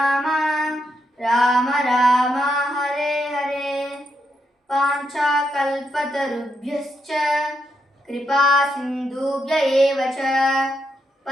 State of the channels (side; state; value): both; normal; correlation 0.81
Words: రామ రామ హరే హరే. పాంచాకల్పతరుభ్యశ్చ కృపా సింధుభ్య ఏవ చ